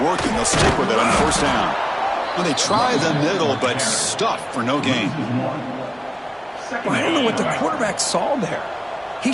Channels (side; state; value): both; identical; correlation 1.00